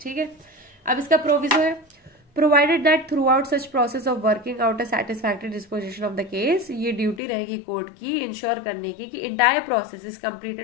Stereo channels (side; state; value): right; drops out; at 7.2 s